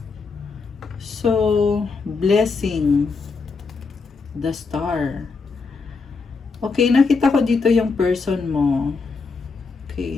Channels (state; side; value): quieter; right; 4.6 dB